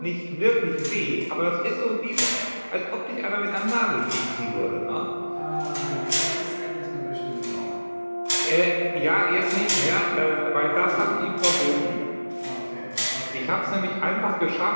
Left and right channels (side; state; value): both; inverted; correlation -1.00